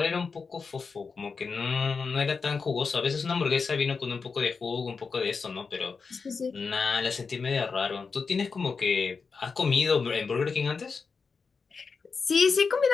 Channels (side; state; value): right; quieter; 5.0 dB